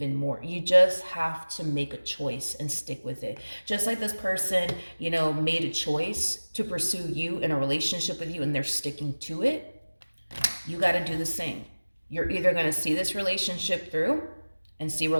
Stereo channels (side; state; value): both; inverted; correlation -1.00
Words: more. You just have to make a choice and stick with it. Just like this person, made a choice to pursue you in a relationship with you and they're sticking to it. You got to do the same. You're either going to see this relationship through and see where